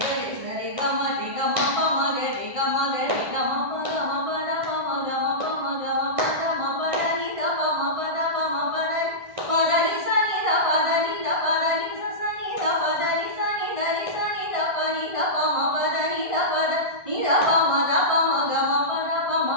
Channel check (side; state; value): left; late; 1.5 ms